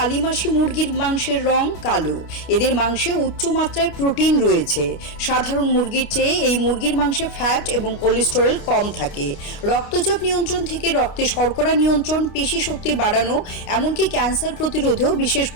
মুরগির মাংসের রং কালো। এদের মাংসে উচ্চ মাত্রায় প্রোটিন রয়েছে। সাধারণ মুরগির চেয়ে এই মুরগির মাংসে ফ্যাট এবং কোলেস্টেরল কম থাকে। রক্তচাপ নিয়ন্ত্রণ থেকে রক্তে শর্করা নিয়ন্ত্রণ, পেশি শক্তি বাড়ানো, এমনকি ক্যান্সার প্রতিরোধেও বিশেষ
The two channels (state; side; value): late; right; 29 ms